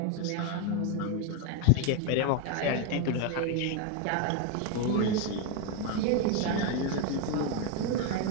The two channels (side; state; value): both; different; correlation 0.02